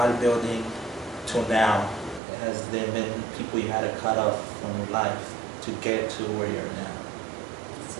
till now, has there been people you had to cut off from your life to get to where you're now? That's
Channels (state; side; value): drops out; left; at 2.2 s